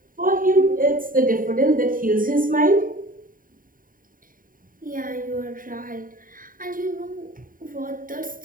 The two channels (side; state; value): left; late; 0.40 ms